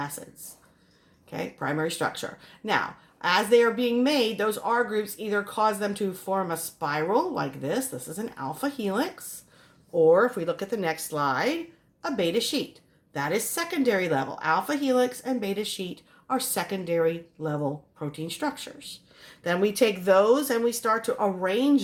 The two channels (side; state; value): both; identical; correlation 1.00